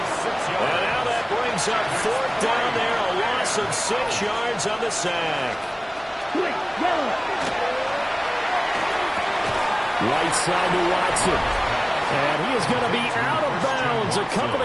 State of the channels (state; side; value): identical; both; correlation 1.00